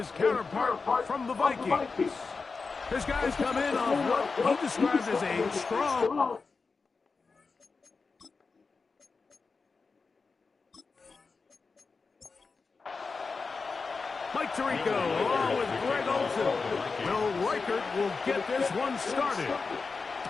counterpart from the Vikings. His guys come in on what he described as a strong... Mike Tirico along with Greg Olsen. Will Reichert will get this one started.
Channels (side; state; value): right; quieter; 4.5 dB